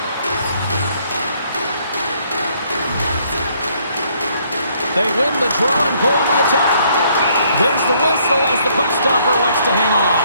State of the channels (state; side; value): inverted; both; correlation -0.67